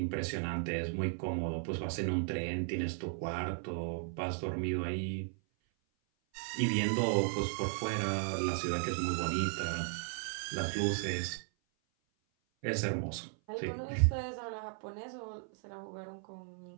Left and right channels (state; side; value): silent; left; 54 dB below the other